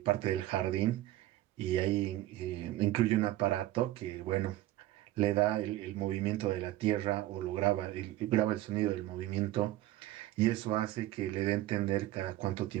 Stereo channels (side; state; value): left; quieter; 15.4 dB